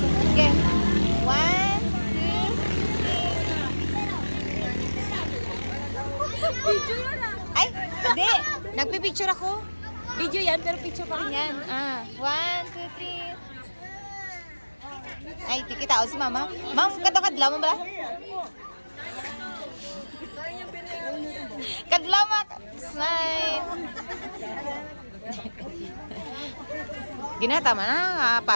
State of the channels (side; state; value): both; inverted; correlation -1.00